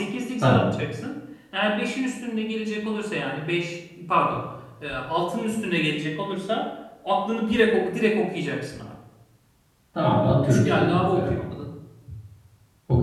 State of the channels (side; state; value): both; identical; correlation 1.00